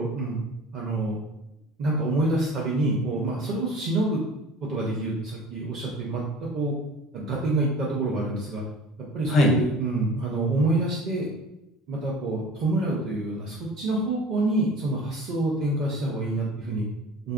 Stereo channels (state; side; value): normal; both; correlation 0.42